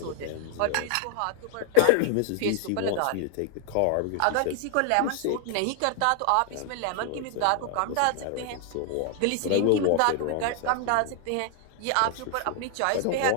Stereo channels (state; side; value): different; both; correlation 0.00